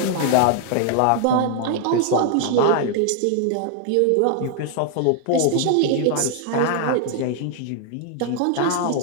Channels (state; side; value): different; both; correlation 0.00